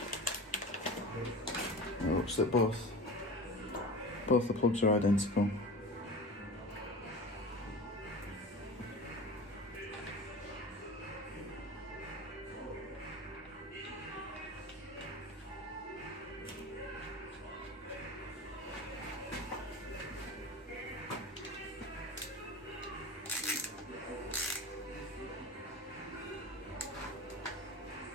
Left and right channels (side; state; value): both; normal; correlation 0.33